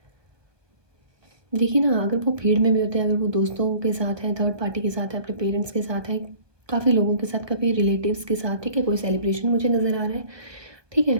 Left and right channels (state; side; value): late; left; 1.1 ms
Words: देखिए ना, अगर वो भीड़ में भी होते हैं, अगर वो दोस्तों के साथ हैं, थर्ड पार्टी के साथ है, अपने पेरेंट्स के साथ है, काफ़ी लोगों के साथ, काफ़ी रिलेटिव्स के साथ, ठीक है। कोई सेलिब्रेशन मुझे नज़र आ रहा है, ठीक है।